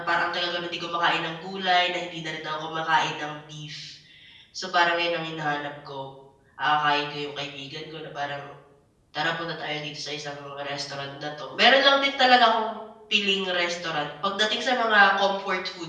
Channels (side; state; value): both; identical; correlation 1.00